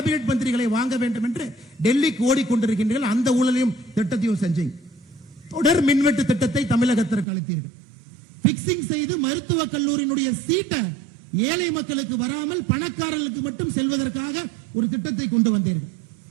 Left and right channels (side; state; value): left; drops out; at 7.2 s